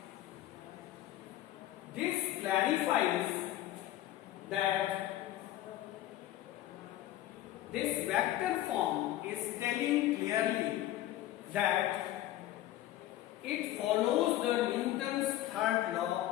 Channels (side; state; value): right; quieter; 14.2 dB